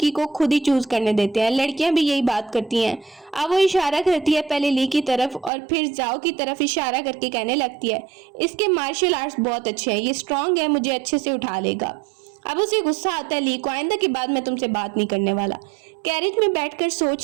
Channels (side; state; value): left; drops out; at 5.5 s